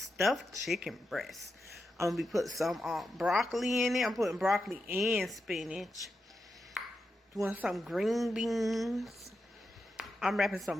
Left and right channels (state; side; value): normal; both; correlation 0.87